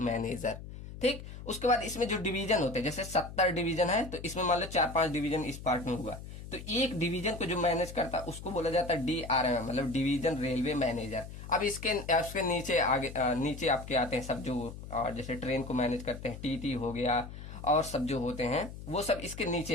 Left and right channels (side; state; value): left; noise; hum, 12 dB below the sound